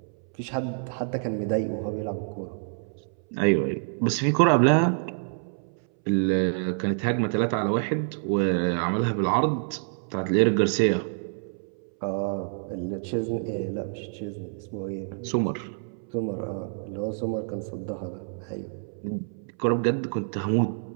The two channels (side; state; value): left; silent; 60 dB below the other